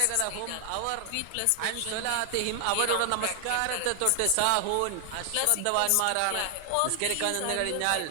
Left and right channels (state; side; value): different; both; correlation 0.00